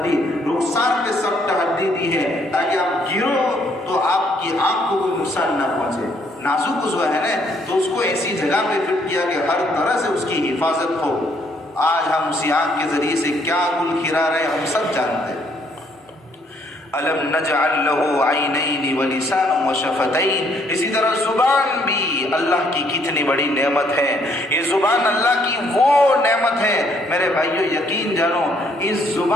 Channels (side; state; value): both; normal; correlation 0.67